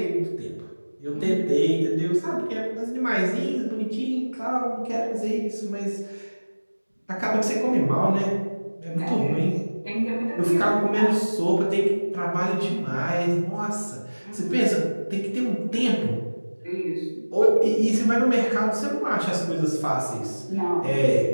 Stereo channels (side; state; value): both; inverted; correlation -1.00